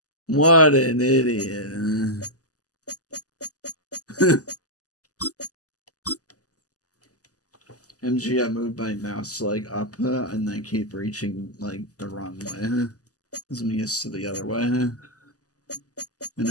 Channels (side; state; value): right; late; 0.67 ms